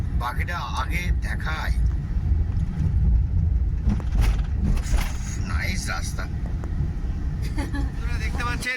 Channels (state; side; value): identical; both; correlation 1.00